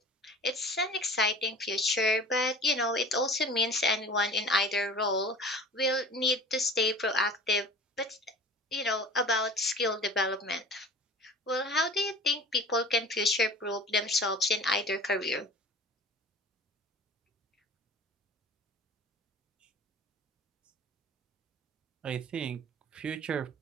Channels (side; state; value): both; normal; correlation 0.41